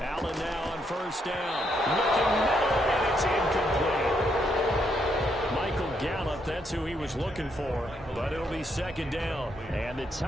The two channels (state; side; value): normal; both; correlation 0.76